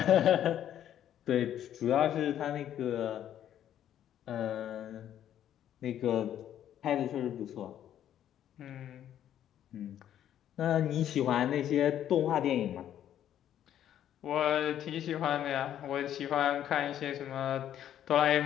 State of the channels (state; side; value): quieter; right; 10.8 dB